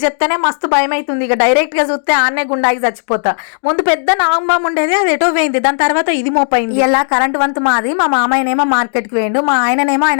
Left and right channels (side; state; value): right; silent; digital silence